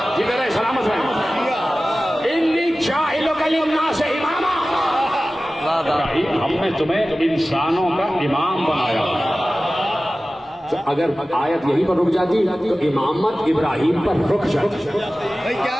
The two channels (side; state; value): both; normal; correlation 0.96